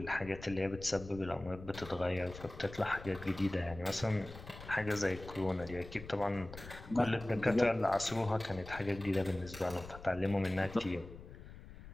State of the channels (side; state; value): left; noise; rumble, 14 dB below the sound